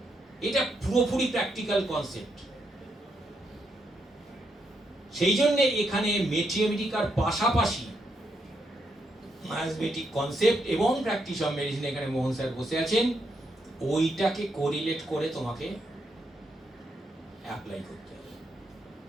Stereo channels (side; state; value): both; normal; correlation 0.79